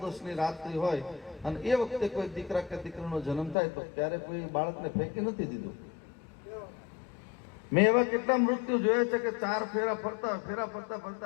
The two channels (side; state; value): right; drops out; at 3.6 s